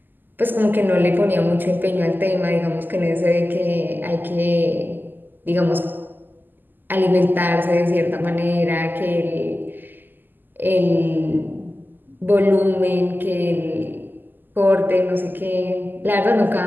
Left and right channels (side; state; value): left; late; 0.090 ms